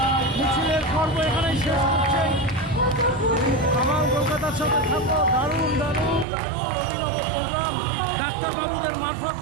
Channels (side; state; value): left; drops out; at 6.2 s